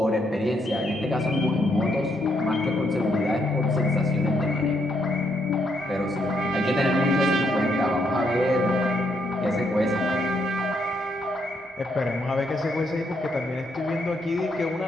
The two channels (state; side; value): normal; both; correlation 0.75